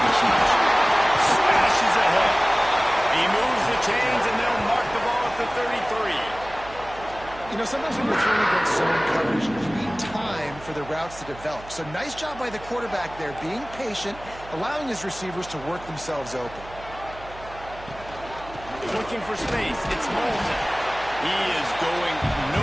be huge. Smashes ahead. He moves the chains, and they'll mark the ball at the 33. You know, sometimes when you're throwing against zone coverage, you need time for the routes to develop. So nice job by the quarterback there, being patient, allowing his receivers to work themselves open. Looking for space. It's Moulton. He is going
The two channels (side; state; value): right; noise; hum, 17 dB below the sound